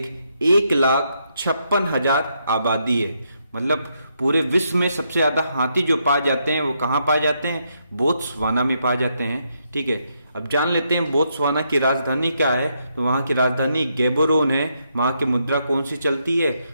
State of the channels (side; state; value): both; inverted; correlation -0.78